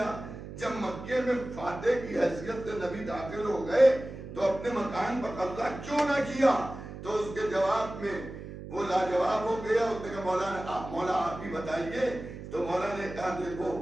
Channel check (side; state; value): right; noise; hum, 11 dB below the sound